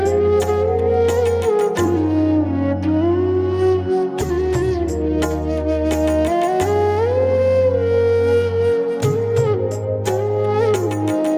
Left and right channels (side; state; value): both; identical; correlation 1.00